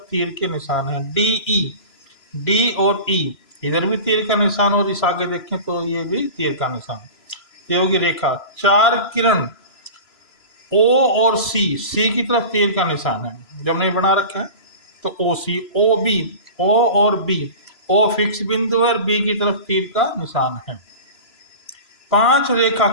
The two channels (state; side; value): late; right; 3.0 ms